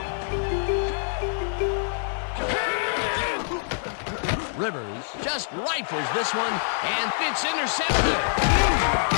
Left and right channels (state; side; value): silent; right; 61 dB below the other